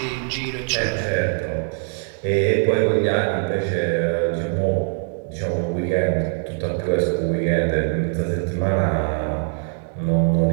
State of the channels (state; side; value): silent; left; 56 dB below the other